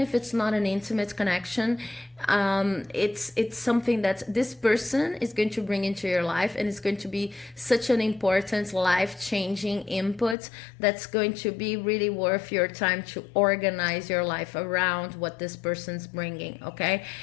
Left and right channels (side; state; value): right; drops out; at 10.4 s